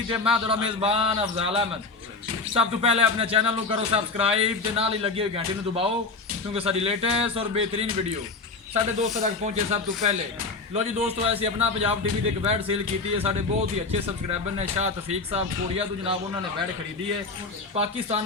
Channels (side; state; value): right; quieter; 3.9 dB